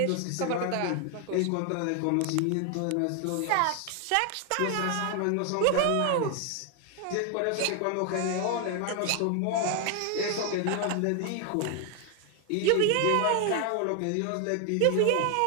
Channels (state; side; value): different; both; correlation 0.00